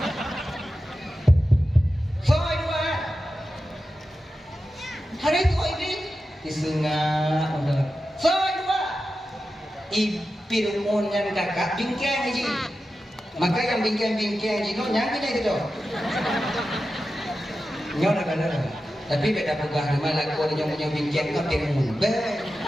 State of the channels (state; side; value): normal; both; correlation 0.92